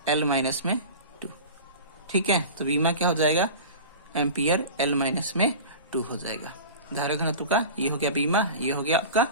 एल माइनस में 2। ठीक है, तो बीमा क्या हो जाएगा, एम्पियर एल माइनस में 2 हो जाएगा। धारा घनत्व का ये हो गया बीमा, ये हो गया आपका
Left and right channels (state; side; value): inverted; both; correlation -0.34